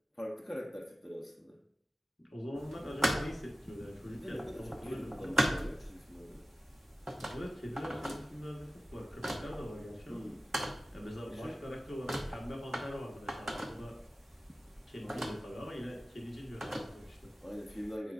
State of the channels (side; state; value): both; normal; correlation 0.96